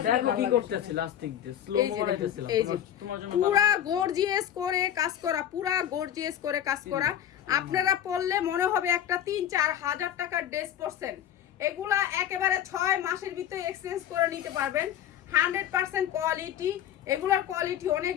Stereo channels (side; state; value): right; quieter; 10.5 dB